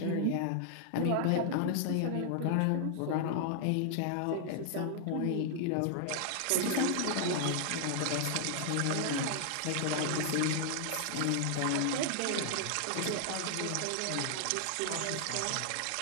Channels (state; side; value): different; both; correlation 0.00